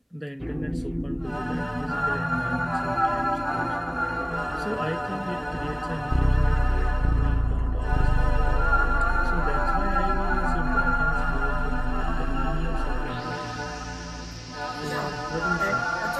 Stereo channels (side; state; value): both; identical; correlation 1.00